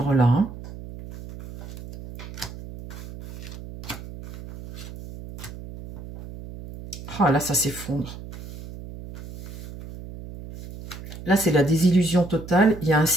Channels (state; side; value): noise; right; hum, 13 dB below the sound